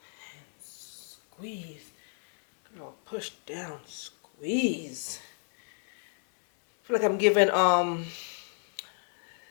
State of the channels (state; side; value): silent; right; 56 dB below the other